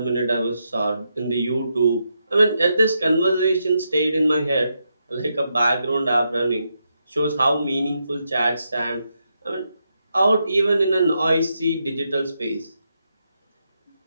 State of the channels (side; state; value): both; inverted; correlation -0.82